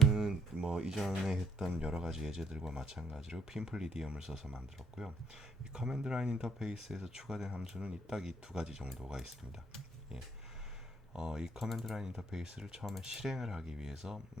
이전에 했던 여러 가지 예제들과 마찬가지로 핀플리디엄을 써서 만들었고요. 이 커맨드 라인 인터페이스에서 추가된 함수는 딱 이 두 가지 정도가 있습니다. 예. 이 커맨드 라인 인터페이스를 처음에 실행을 하기 위해서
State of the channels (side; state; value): both; normal; correlation 0.69